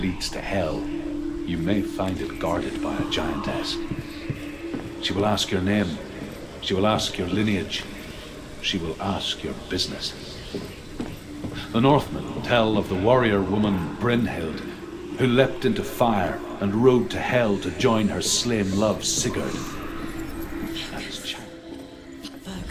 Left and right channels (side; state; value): both; identical; correlation 1.00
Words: to Hell, you may find it guarded by a giantess. She will ask your name. She will ask your lineage. She will ask your business. The Northmen tell of the warrior woman Brynhild, who leapt into fire and rode to Hell to join her slain love Sigurd.